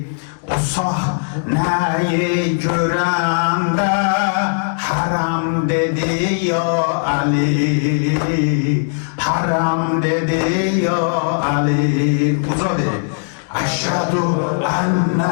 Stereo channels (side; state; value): right; silent; digital silence